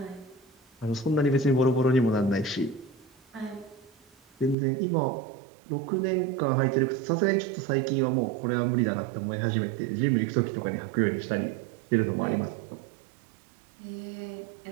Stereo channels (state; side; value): drops out; left; at 4.5 s